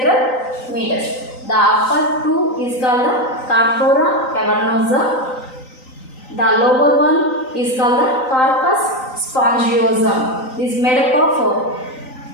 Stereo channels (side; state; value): right; late; 3.9 ms